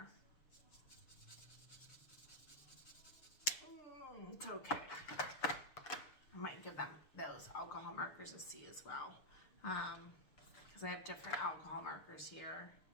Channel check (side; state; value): right; late; 6.8 ms